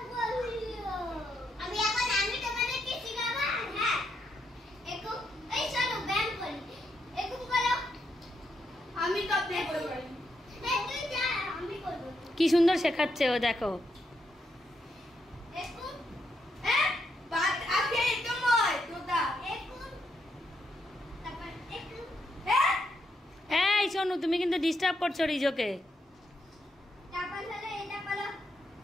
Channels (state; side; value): normal; both; correlation 0.80